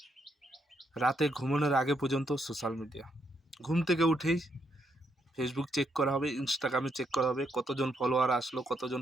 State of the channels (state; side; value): normal; both; correlation 0.77